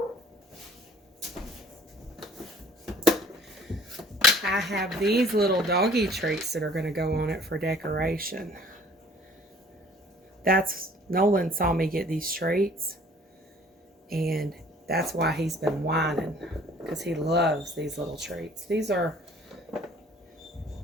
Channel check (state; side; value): normal; both; correlation 0.54